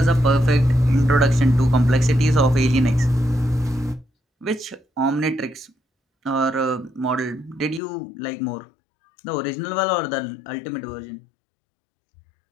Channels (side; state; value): right; drops out; at 7.8 s